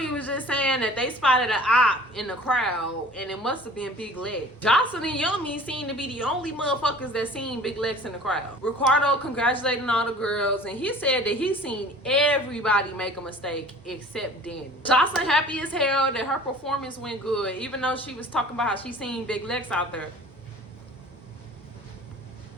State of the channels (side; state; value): both; normal; correlation 0.46